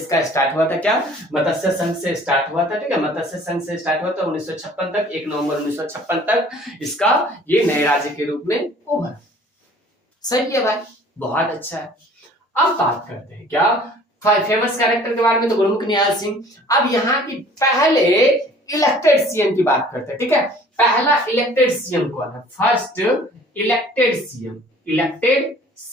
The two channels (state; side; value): normal; both; correlation 0.51